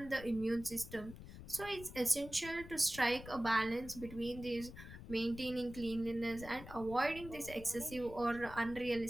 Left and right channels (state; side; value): noise; left; rumble, 14 dB below the sound